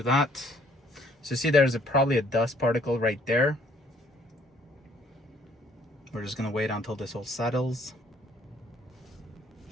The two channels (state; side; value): normal; both; correlation 0.62